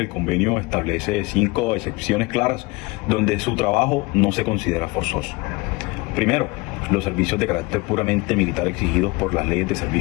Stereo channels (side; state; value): right; quieter; 24.2 dB